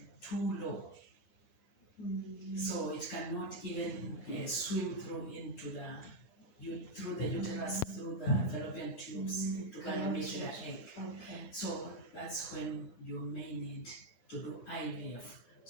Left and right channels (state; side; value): late; right; 8.7 ms